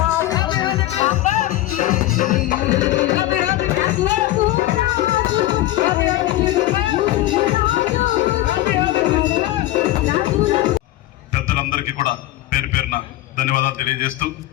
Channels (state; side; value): quieter; right; 15.6 dB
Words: పెద్దలందరికీ కూడా పేరు పేరున ధన్యవాదాలు తెలియజేస్తూ,